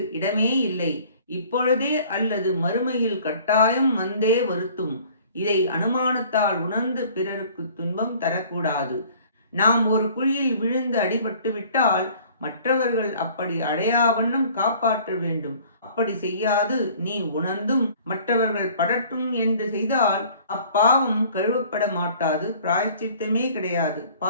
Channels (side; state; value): both; inverted; correlation -0.52